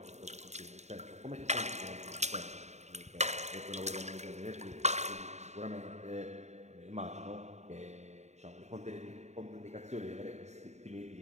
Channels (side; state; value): left; late; 0.33 ms